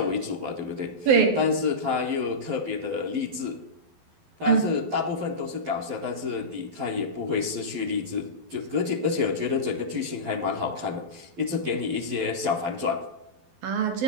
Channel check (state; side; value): late; left; 12 ms